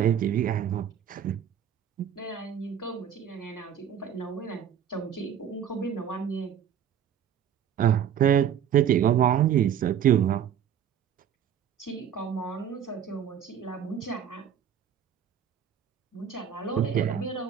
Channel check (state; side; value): quieter; left; 9.1 dB